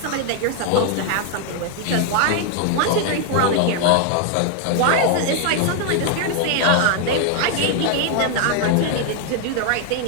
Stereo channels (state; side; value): different; both; correlation 0.00